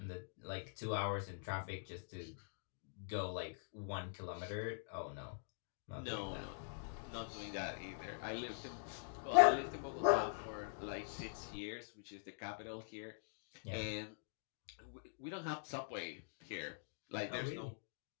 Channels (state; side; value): silent; right; digital silence